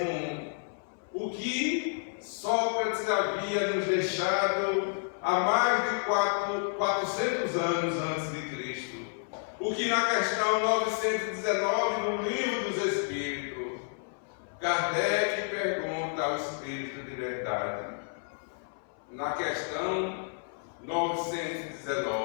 o que Sócrates havia nos deixado há mais de 400 anos antes de Cristo. O que na questão 919 no Livro dos Espíritos, Kardec pergunta ao Espírito de Verdade. Na questão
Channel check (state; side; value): silent; right; 57 dB below the other